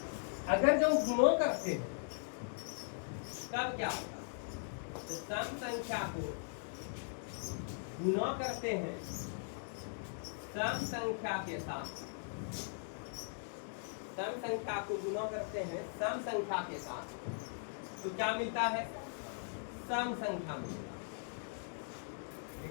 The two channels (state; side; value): silent; right; digital silence